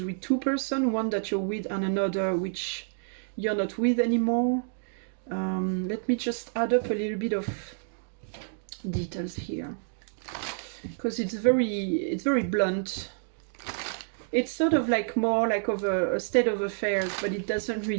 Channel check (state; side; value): silent; left; digital silence